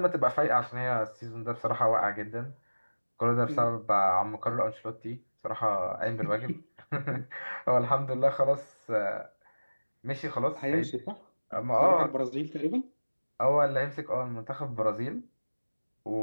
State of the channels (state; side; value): inverted; both; correlation -1.00